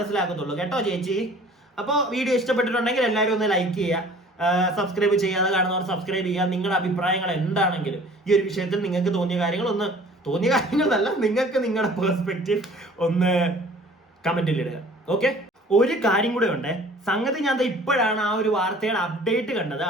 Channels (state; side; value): normal; both; correlation 0.50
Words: കേട്ടോ ചേച്ചി. അപ്പോൾ വീഡിയോ ഇഷ്ടപ്പെട്ടിട്ടുണ്ടെങ്കിൽ എല്ലാവരും ഒന്ന് ലൈക്ക് ചെയ്യുക, സബ്സ്ക്രൈബ് ചെയ്യാതെ കാണുന്നവർ സബ്സ്ക്രൈബ് ചെയ്യുക. നിങ്ങളുടെ അഭിപ്രായങ്ങൾ എന്താണെങ്കിലും ഈ ഒരു വിഷയത്തിൽ നിങ്ങൾക്ക് തോന്നിയ കാര്യങ്ങളല്ല, നിങ്ങൾക്ക് നിങ്ങളുടെ പെർസ്പെക്റ്റീവ് ഒന്ന് കമന്റിൽ ഇടുക. ഓക്കെ, ഒരു കാര്യം കൂടെ ഉണ്ട്. സംഗതി ഞാൻ ഇപ്പോഴാണ് ആ ഒരു വാർത്തയുടെ അപ്ഡേറ്റ് കണ്ടത്.